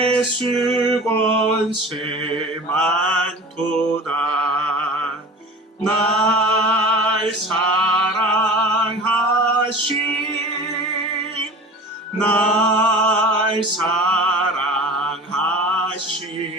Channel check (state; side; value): normal; both; correlation 0.37